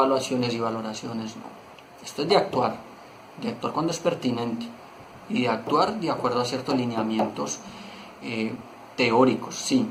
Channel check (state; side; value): identical; both; correlation 1.00